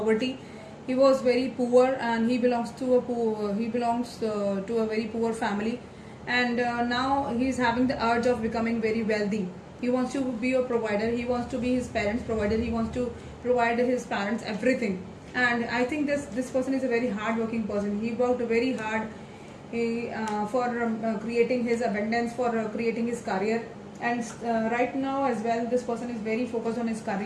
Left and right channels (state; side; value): identical; both; correlation 1.00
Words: He was very poor, and he belongs to a very poor family, and now he's having the urge of becoming very wealthy. He wants to be a provider. He wants to be his parents provider. He wants to provide his parents everything. And I think this person is a very hard working person. He worked very hard for creating his abundance, for creating his career. And right now as well, this person is very focused on his